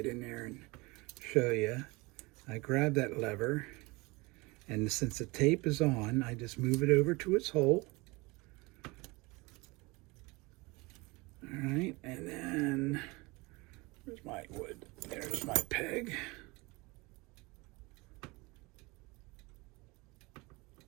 in there and show you. I grab that lever, and since the tape is on, I just move it over to its hole. All right, and then where's my wood? There's my peg.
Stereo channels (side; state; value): left; quieter; 24.6 dB